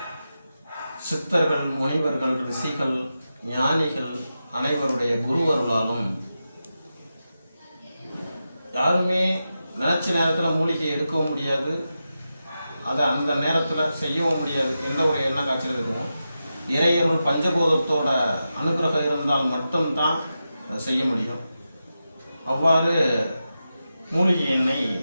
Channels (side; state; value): both; inverted; correlation -0.90